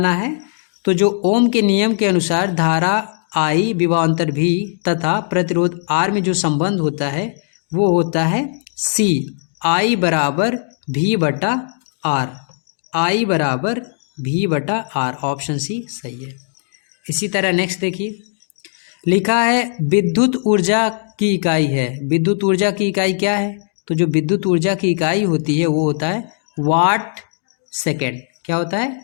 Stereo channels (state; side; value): silent; right; digital silence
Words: है। तो जो ओम के नियम के अनुसार धारा I विभवांतर V तथा प्रतिरोध R में जो संबंध होता है वो होता है C, I बराबर V बटा R। I बराबर V बटा R। ऑप्शन सी सही है। इसी तरह नेक्स्ट देखिए, लिखा है विद्युत ऊर्जा की इकाई है। विद्युत ऊर्जा की इकाई क्या है, तो जो विद्युत ऊर्जा की इकाई होती है वो होता है वाट सेकेंड। क्या होता